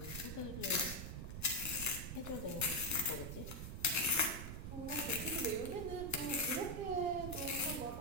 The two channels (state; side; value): noise; right; rumble, 6 dB below the sound